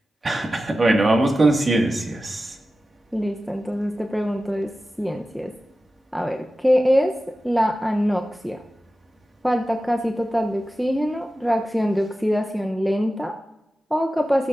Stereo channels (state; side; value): normal; both; correlation 0.94